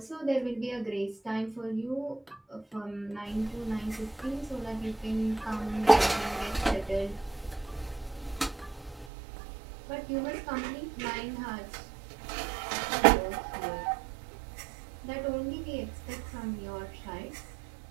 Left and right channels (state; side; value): drops out; left; at 9.1 s